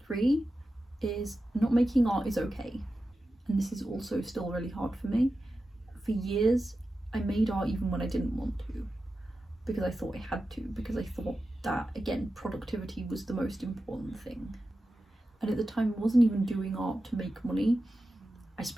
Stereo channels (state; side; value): normal; both; correlation 0.92